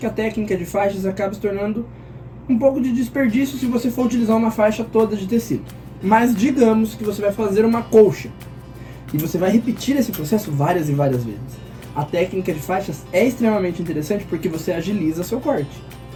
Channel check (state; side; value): identical; both; correlation 1.00